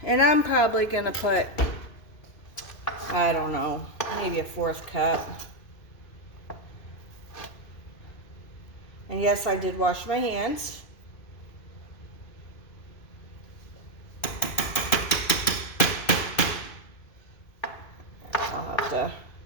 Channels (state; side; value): late; right; 2.5 ms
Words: And I'm probably gonna put, I don't know, maybe a 1/4 cup. And yes, I did wash my hands. I'll have to